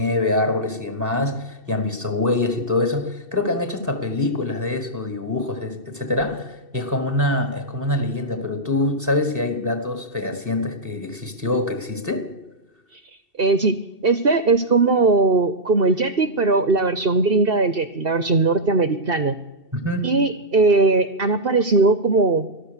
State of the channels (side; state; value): left; late; 2.7 ms